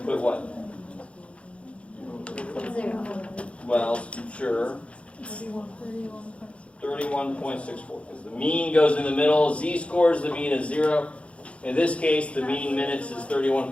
put what? Well, sure. 31.64. Because the mean goes in the middle. Z-scores, the mean is 0. In this case, the mean minutes is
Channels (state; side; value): late; right; 0.061 ms